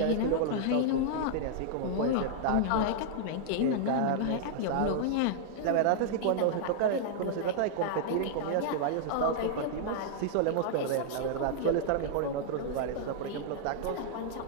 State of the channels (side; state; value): both; different; correlation -0.01